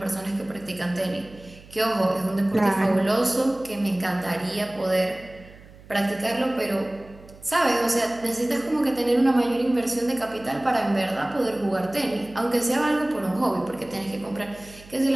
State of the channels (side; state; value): right; noise; hum, 21 dB below the sound